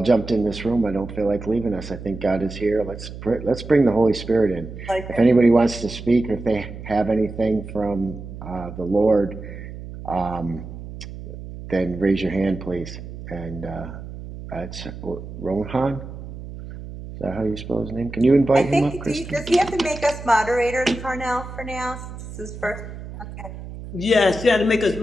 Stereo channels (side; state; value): right; noise; hum, 11 dB below the sound